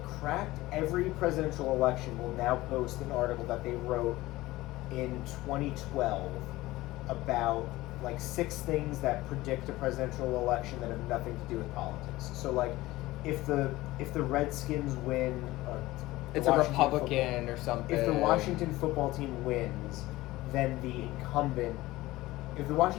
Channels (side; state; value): right; quieter; 18.3 dB